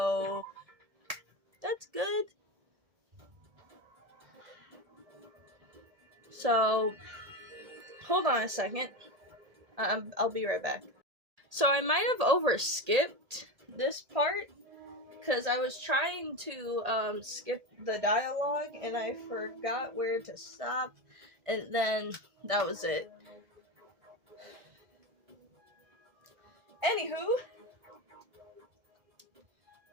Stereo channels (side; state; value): left; late; 1.8 ms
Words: that's good. So, hold on a second. I'll be right back. So I might have overskipped this part because I was trying to skip the dialogue and I forgot where to stop, and then that was it. Anywho,